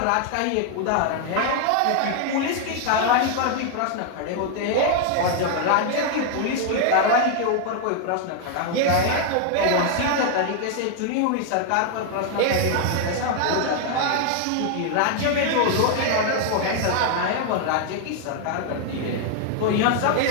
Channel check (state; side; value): different; both; correlation 0.00